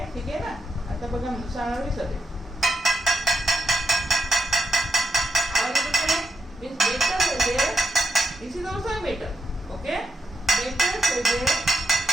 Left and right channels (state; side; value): normal; both; correlation 0.82